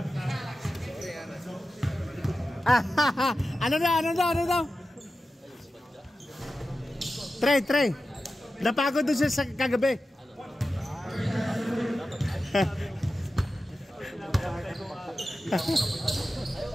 Ano daw? Try. Napagod doon siya sa kagabi.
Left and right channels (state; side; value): normal; both; correlation 0.93